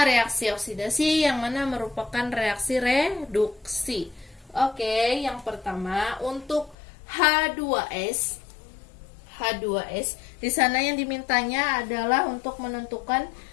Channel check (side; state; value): right; drops out; at 6.8 s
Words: reaksi oksidasi, yang mana merupakan reaksi reduksi? Oke, yang pertama untuk H2S. Di sana yang dimintanya adalah untuk menentukan